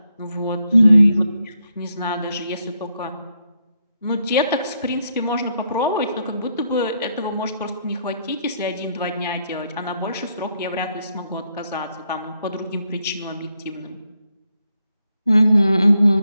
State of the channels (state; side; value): inverted; both; correlation -0.78